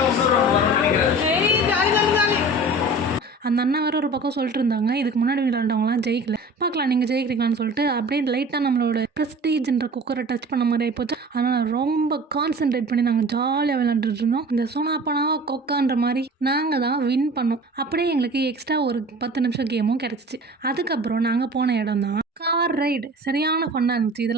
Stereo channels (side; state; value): both; normal; correlation 0.41